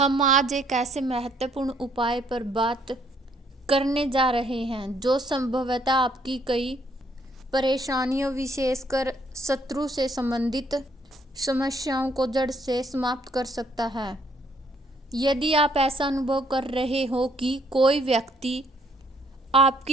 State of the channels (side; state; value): both; normal; correlation 0.67